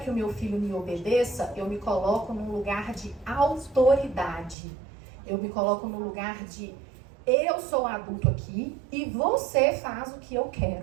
que o meu filho me obedeça, eu me coloco num lugar de autoridade. Eu me coloco no lugar de: eu sou adulto aqui e você faz o que eu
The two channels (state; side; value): drops out; left; at 4.5 s